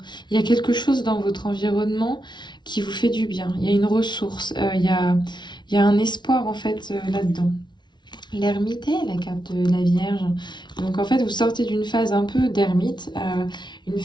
Il y a quelque chose dans votre environnement qui vous fait du bien. Il y a une ressource, il y a un espoir en fait là-dedans. L'ermite est la carte de la Vierge. Donc en fait vous sortez d'une phase un peu d'ermite, une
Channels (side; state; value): right; late; 0.21 ms